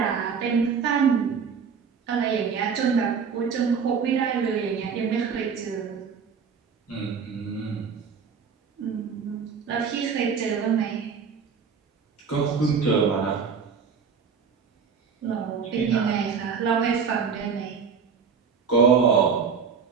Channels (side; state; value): left; quieter; 6.1 dB